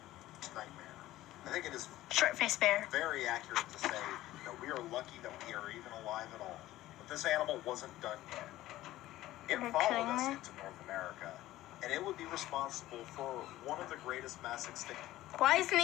nightmare. I think it is Short-faced bear. very accurate to say that we are lucky that we are even alive at all. But this animal wasn't done yet. It Are you followed kidding us me? into North America, and it would be responsible for one of the greatest mass extinctions Why isn't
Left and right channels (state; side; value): quieter; right; 15.6 dB